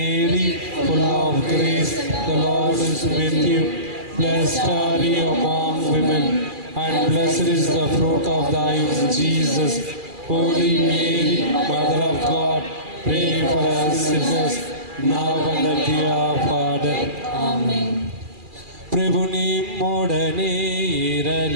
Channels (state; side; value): late; left; 2.4 ms